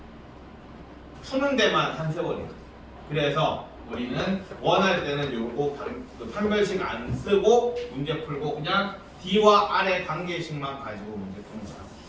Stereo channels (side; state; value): both; identical; correlation 1.00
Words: 푸는 데만 한 세월이야. 그래서 우리는 원할 때는 요거 판별식 안 쓰고 문제 풀고 그냥 D와 R의 관계식만 가지고 문제 푸는 거야.